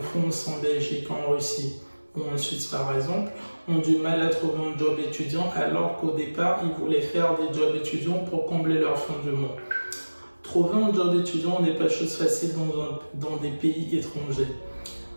en Belgique, en Russie ou en Suisse par exemple, ont du mal à trouver un job étudiant alors qu'au départ, ils voulaient faire des jobs étudiants pour combler leur fin du mois. Trouver un job étudiant n'est pas chose facile dans des pays étrangers.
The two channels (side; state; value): both; inverted; correlation -1.00